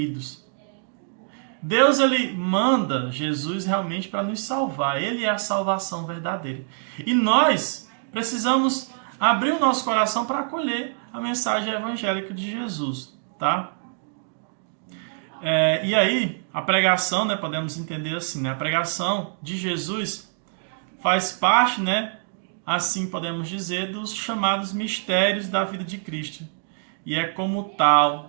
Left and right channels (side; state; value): left; silent; digital silence